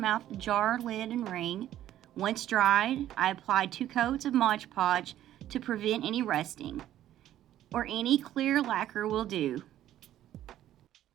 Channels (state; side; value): quieter; left; 12.5 dB